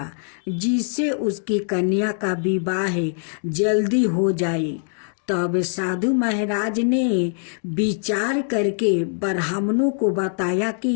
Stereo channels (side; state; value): right; silent; digital silence